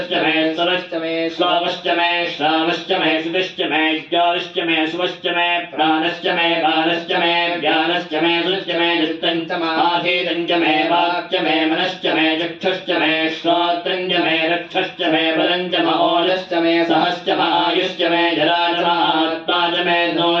मे सरश्च मे श्वावश्च मे श्रावश्च मे श्रुतिश्च मे ज्ञानश्च मे सुवश्च मे प्राणश्च मे बाणश्च मे ज्ञानश्च मे सुश्च मे चित्तञ्च माधीतञ्च मे वाक्च मे मनश्च मे चक्षुश्च मे श्रोत्रञ्च मे रक्षश्च मे बलञ्च महोजश्च मे सहश्च आयुश्च मे जराजमात्मा च मे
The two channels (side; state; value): both; identical; correlation 1.00